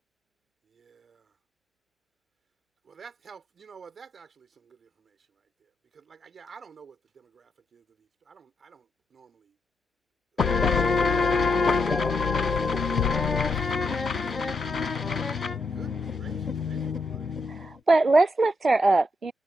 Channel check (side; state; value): both; normal; correlation 0.80